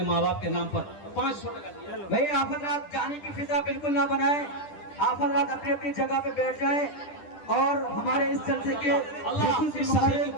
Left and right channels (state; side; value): late; right; 10 ms